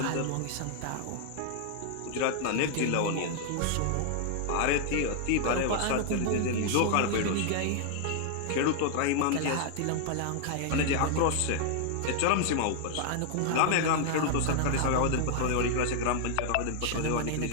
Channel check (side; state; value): both; different; correlation 0.00